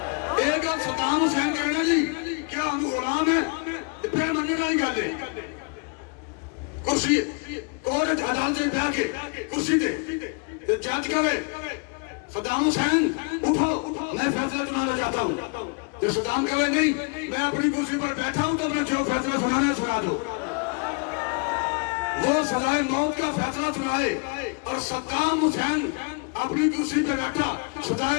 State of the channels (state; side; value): quieter; right; 33.9 dB